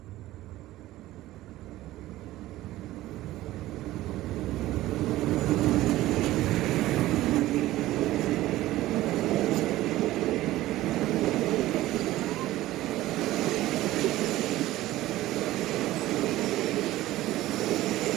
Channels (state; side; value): quieter; left; 16.0 dB